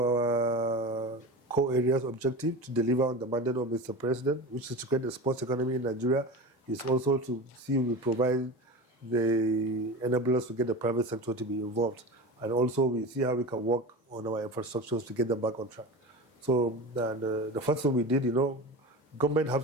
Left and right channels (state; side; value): normal; both; correlation 0.29